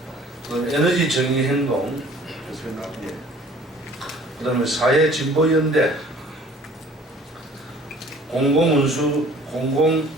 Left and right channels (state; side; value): normal; both; correlation 0.51